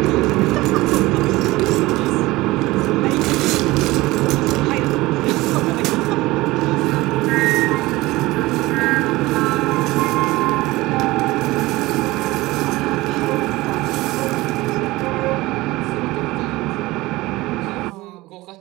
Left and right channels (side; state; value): left; quieter; 19.6 dB